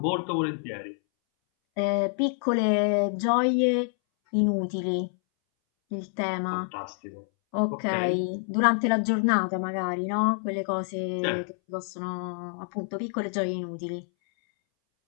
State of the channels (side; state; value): right; silent; 60 dB below the other